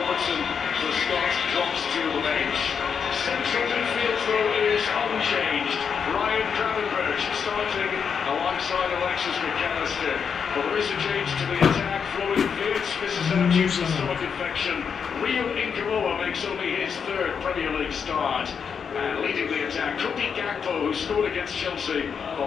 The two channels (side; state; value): right; quieter; 6.6 dB